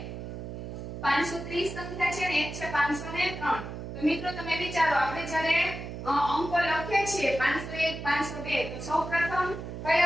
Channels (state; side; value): noise; right; hum, 8 dB below the sound